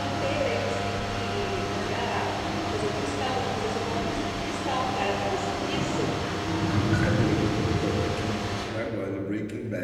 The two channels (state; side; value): identical; both; correlation 1.00